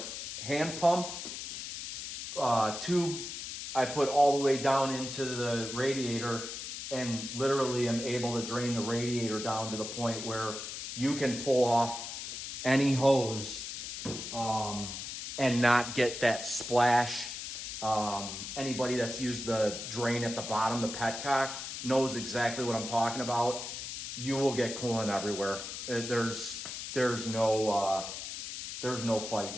hand pump tube, I put all the way down into the radiator, and literally am able to drain the radiator down to the point where you can pull off any hose and not get that splash. Anybody that's used the drain at the bottom, the petcock, knows exactly what I'm talking about. You will get coolant everywhere. There's no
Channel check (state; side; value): noise; left; hiss, 7 dB below the sound